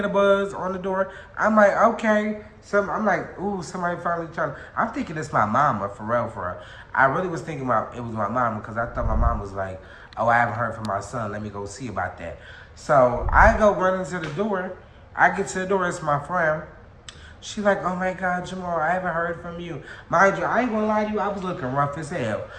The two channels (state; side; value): identical; both; correlation 1.00